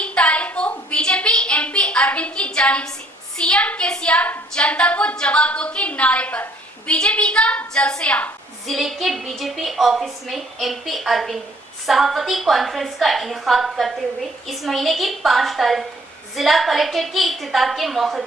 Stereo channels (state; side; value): normal; both; correlation 0.61